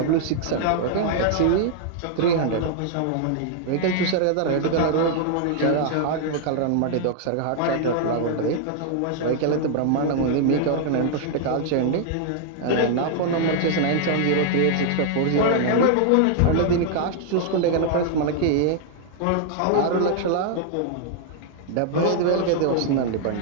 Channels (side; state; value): both; different; correlation 0.00